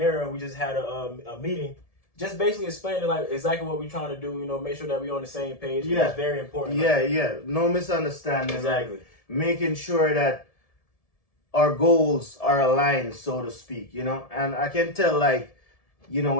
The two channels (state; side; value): late; right; 1.7 ms